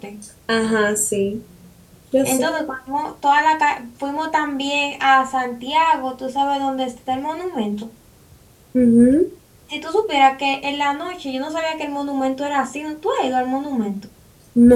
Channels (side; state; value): both; identical; correlation 1.00